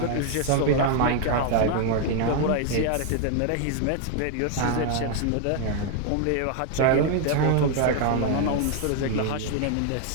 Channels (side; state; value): both; different; correlation 0.00